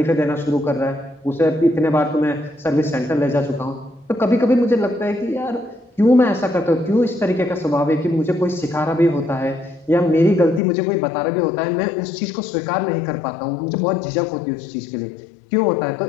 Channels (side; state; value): right; drops out; at 10.6 s